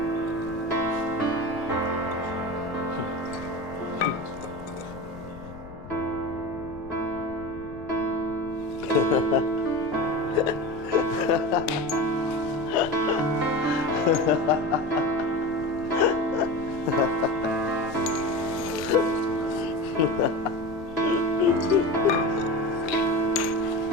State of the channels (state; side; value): noise; left; rumble, 16 dB below the sound